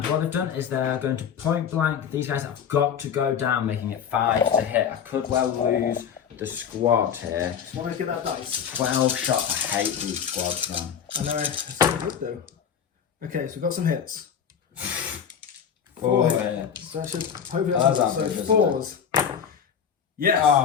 what they've done is they're going to point blank. These guys have got to go down, making it 5 to hit. I could well lose the squad here. Want to get that dice? 12 shots. I hate these squads, man. I know, it's so good though. Okay, so we've got some hits. 4 hits. So I should hopefully That's that's so ambitious, 4s. Yes,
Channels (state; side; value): quieter; right; 7.8 dB